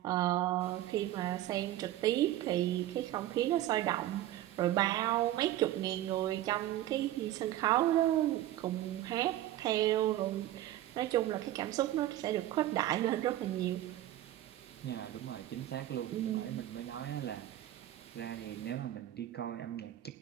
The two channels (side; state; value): left; quieter; 13.8 dB